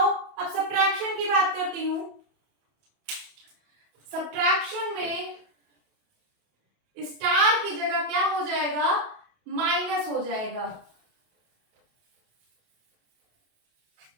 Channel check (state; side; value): late; left; 28 ms